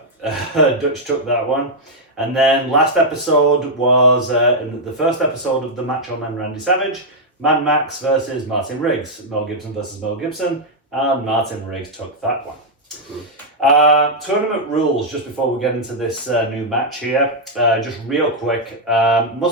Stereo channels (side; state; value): both; normal; correlation -0.03